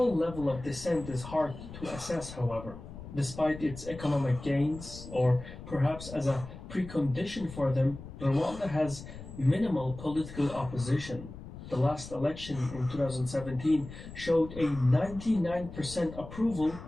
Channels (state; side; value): noise; left; rumble, 13 dB below the sound